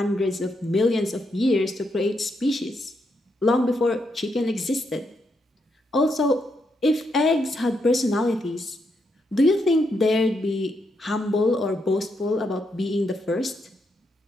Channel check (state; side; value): normal; both; correlation 0.80